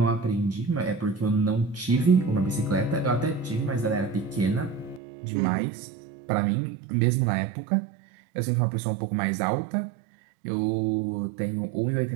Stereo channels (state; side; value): drops out; left; at 5.0 s